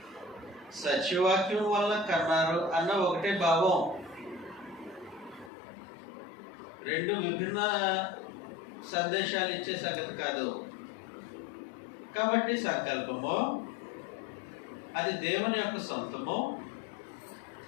సత్యవాక్యం వల్ల కన్నారు అన్న ఒకటే భావం. రెండు విభిన్న సందేశాలు ఇచ్చే సంగతి కాదు. కాబట్టి సంకల్పము అది దేవుని యొక్క సొంతము.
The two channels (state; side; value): drops out; right; at 5.5 s